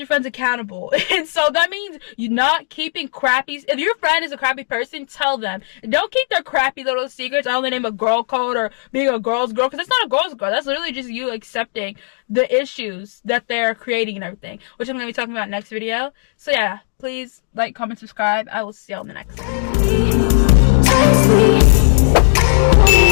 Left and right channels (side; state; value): right; silent; digital silence